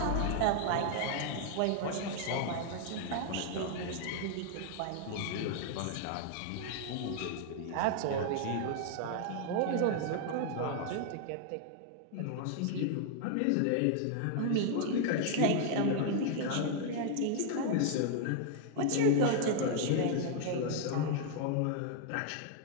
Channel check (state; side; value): different; both; correlation 0.00